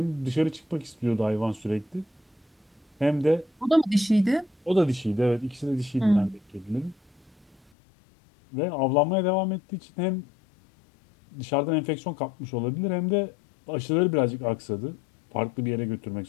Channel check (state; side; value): drops out; right; at 7.7 s